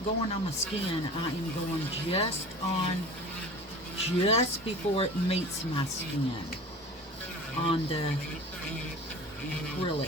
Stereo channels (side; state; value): both; normal; correlation 0.39